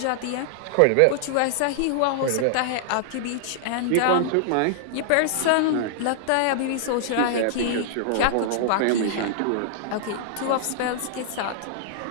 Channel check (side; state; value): both; different; correlation -0.01